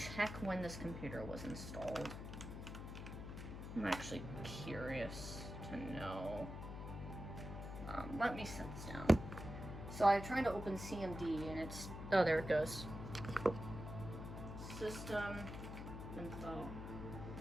when this computer was installed. I'm actually curious to know. Let me set this down. So I'm trying to open CMD and it's, oh, there it goes. System info.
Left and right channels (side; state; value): left; noise; hum, 8 dB below the sound